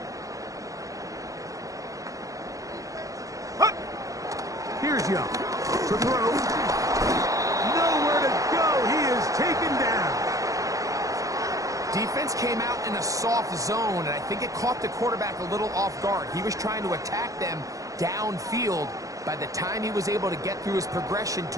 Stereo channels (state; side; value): late; left; 0.16 ms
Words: Hut. Here's Young to throw. Nowhere to go. He is taken down. Defense came out in a soft zone, and I think it caught the quarterback a little off guard. He was trying to attack them downfield. By the time he was able to get through his progression